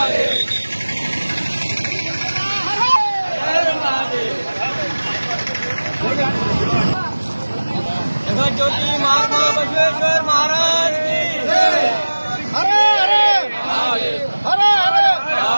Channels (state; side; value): inverted; both; correlation -1.00